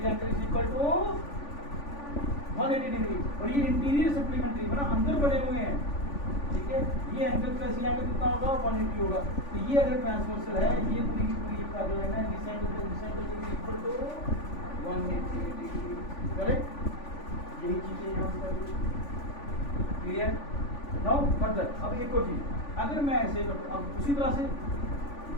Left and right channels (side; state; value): right; late; 3.5 ms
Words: angle is equal to 180 degree. और ये इंटीरियर सप्लीमेंट्री मतलब अंदर बने हुए हैं, ठीक है, ये एंगल प्लस ये एंगल कितना होगा, 180 होगा। तो ये अगर ट्रांसवर्सल है, ये पूरी पूरी पैरेलल है, this angle plus this angle is equal to 180 degree. Correct, यही चीजें यहाँ पर क्लियर। नाउ फर्दर, अब एक और चीज, अगर मैं ऐसे, अब उसी तरह से